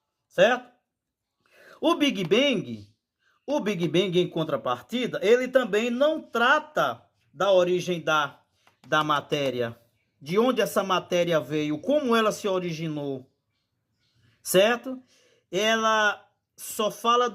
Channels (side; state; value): both; identical; correlation 1.00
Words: certo? O Big Bang em contrapartida, ele também não trata da origem da matéria, de onde essa matéria veio, como ela se originou, certo? Ela só fala